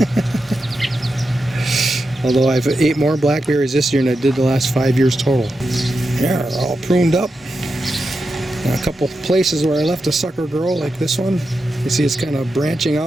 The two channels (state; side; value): normal; both; correlation 0.88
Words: Although I've ate more blackberries this year than I did the last 5 years total. Yeah, they're all pruned up. And a couple places where I left a sucker grow, like this one. You see it's kind of branching